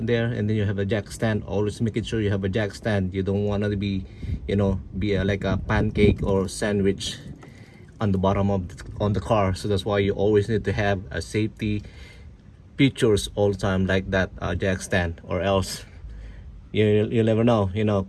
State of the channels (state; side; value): identical; both; correlation 1.00